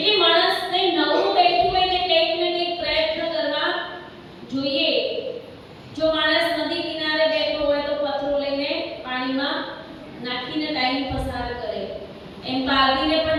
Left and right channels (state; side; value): identical; both; correlation 1.00